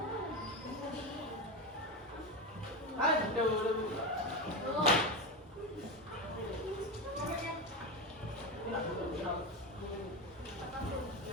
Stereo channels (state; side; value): normal; both; correlation 0.17